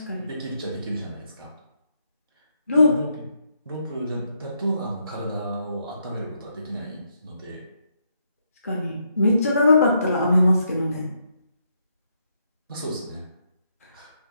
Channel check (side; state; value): both; inverted; correlation -0.77